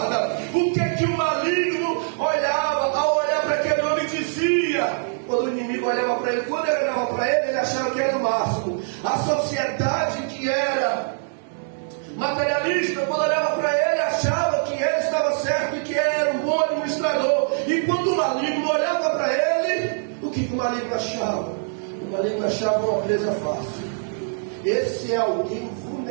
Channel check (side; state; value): left; silent; digital silence